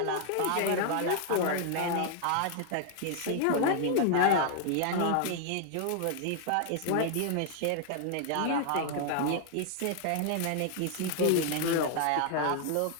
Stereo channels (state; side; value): different; both; correlation 0.00